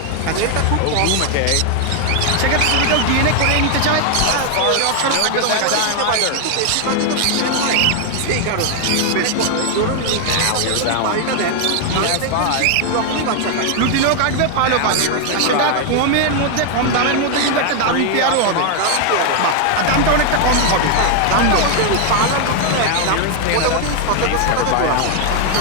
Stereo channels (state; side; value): different; both; correlation 0.00